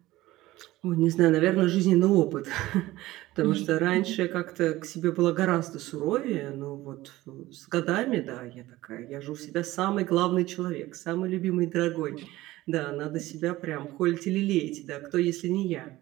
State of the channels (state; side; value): quieter; left; 17.3 dB